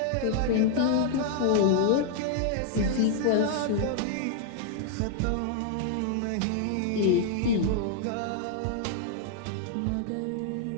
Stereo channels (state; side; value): different; both; correlation -0.01